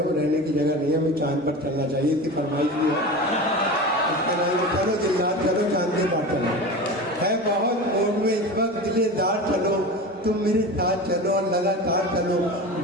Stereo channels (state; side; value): normal; both; correlation 0.29